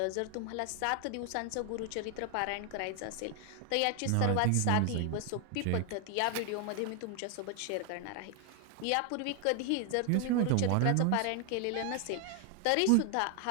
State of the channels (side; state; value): both; different; correlation 0.00